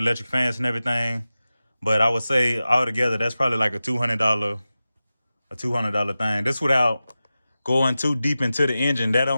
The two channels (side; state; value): both; inverted; correlation -0.95